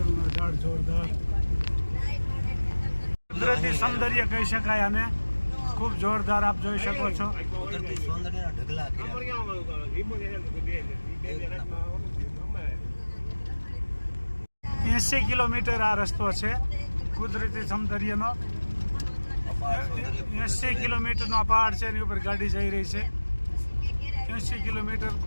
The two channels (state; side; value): inverted; both; correlation -1.00